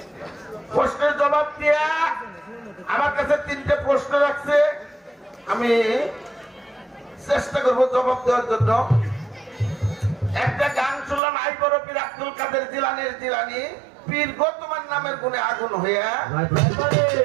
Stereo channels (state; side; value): drops out; left; at 11.2 s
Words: প্রশ্নের জবাব দিয়া আমার কাছে 3টে প্রশ্ন রাখছে, আমি চেষ্টা করবো জবাব দেওয়ার জন্য। একটা গান শুনলাম, আই বড় পীর আব্দুল কাদের জিলানীর জিলানী পীর গতমান নামের গুণে আগুন হইয়া